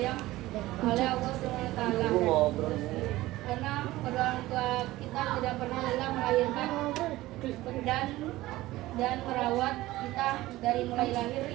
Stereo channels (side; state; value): left; quieter; 17.4 dB